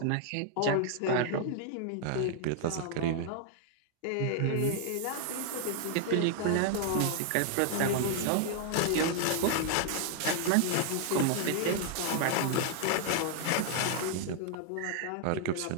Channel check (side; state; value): both; different; correlation 0.00